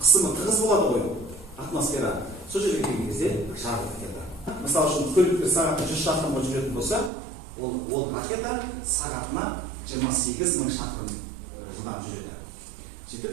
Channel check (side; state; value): left; drops out; at 7.1 s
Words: тығыз болады ғой, атмосфера. Сол жерге келген кезде жарылып кетеді. Мысалы үшін, көліктер сағатына 100 шақырымға жүретін болса, ол ракета сағатына 28 мың шақырым жылдам жүреді. Сөйтіп,